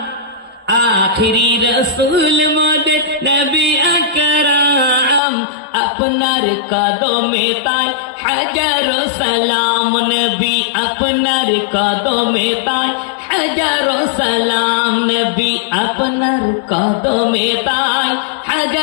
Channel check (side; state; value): right; drops out; at 5.2 s